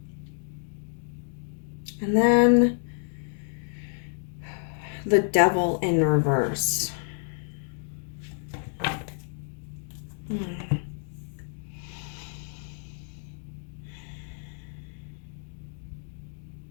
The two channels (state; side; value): silent; right; digital silence